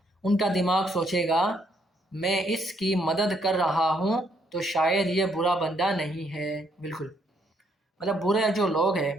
उनका दिमाग सोचेगा मैं इसकी मदद कर रहा हूँ तो शायद ये बुरा बंदा नहीं है। बिल्कुल, मतलब बुरे जो लोग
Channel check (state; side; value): normal; both; correlation 0.71